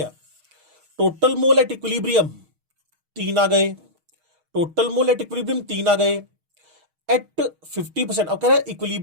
टोटल मोल एट इक्विलिब्रियम 3 आ गए, टोटल मोल एट इक्विलिब्रियम 3 आ गए एट 50%। अब कह रहा है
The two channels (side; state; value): left; late; 6.4 ms